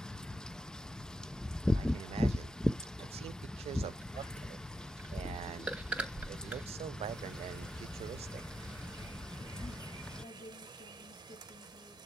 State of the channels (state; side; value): normal; both; correlation 0.86